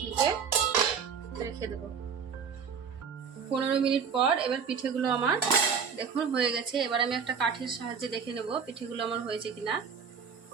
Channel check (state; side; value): quieter; left; 6.4 dB